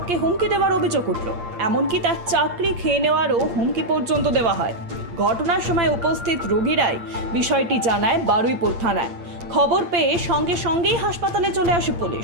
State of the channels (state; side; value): late; left; 8.6 ms